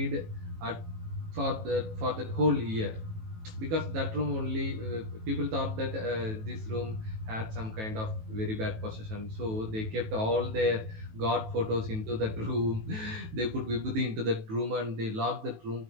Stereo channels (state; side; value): late; left; 18 ms